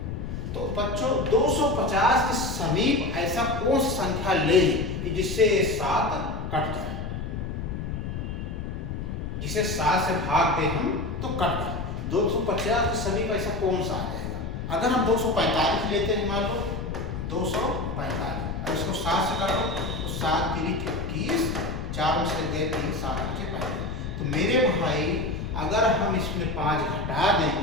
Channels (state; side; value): noise; left; rumble, 5 dB below the sound